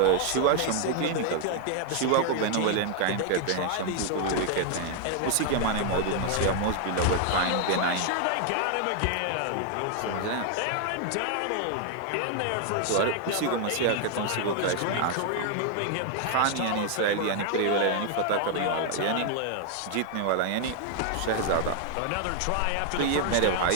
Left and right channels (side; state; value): both; different; correlation 0.00